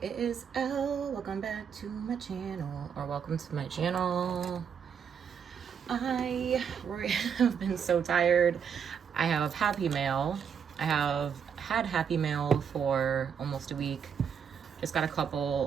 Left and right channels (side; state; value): left; quieter; 7.3 dB